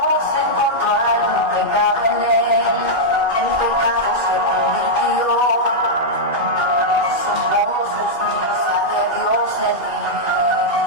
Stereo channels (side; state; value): right; late; 2.5 ms